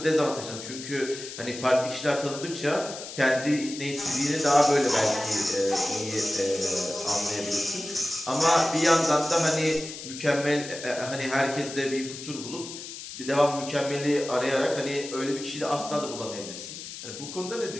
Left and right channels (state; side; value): noise; left; hiss, 11 dB below the sound